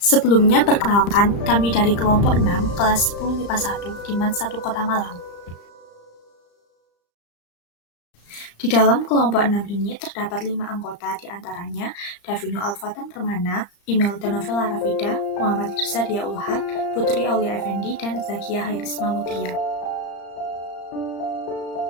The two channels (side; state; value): right; late; 35 ms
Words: perkenalkan, kami dari kelompok 6, kelas 10 MIPA 1, di MAN 1 Kota Malang. Di dalam kelompok 6 ini terdapat 5 anggota, di antaranya Davino Alfatan Permana, Imelda Novela Rafida, Muhammad Irsa Dia Ulhak, Putri Aulia Effendi, dan Zakia Hairisma Mutia.